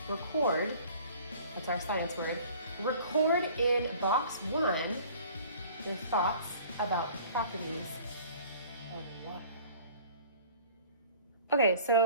record, that's our science word, record in box 1 your thoughts about the properties of water. Okay,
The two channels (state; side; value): inverted; both; correlation -0.49